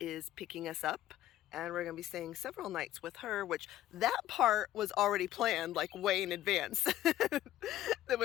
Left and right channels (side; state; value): right; quieter; 13.5 dB